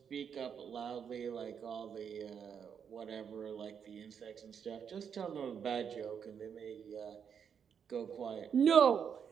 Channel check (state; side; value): quieter; left; 7.4 dB